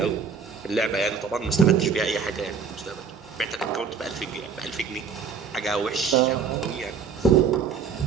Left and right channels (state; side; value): quieter; left; 6.2 dB